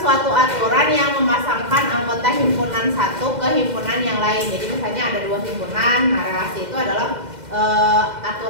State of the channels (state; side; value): late; left; 2.1 ms